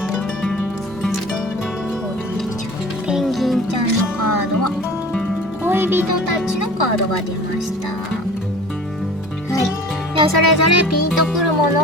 ペンギンちゃんのカードは恋人たちのカードが出ました。はい。ではそれぞれピンとくるも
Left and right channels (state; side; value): noise; right; hum, 22 dB below the sound